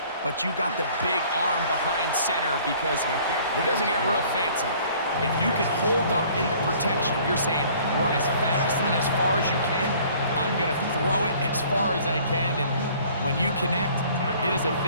but you got the big arm behind center, because it doesn't get real fancy. If you can hold up in the protection, you're saying run as fast and as far as you can. I'm going to throw it as far as I can, and when you connect, it is a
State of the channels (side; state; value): both; inverted; correlation -0.54